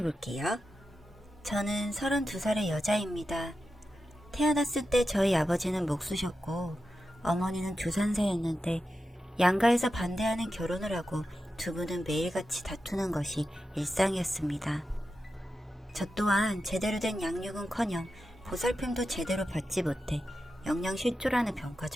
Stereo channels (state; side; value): normal; both; correlation 0.90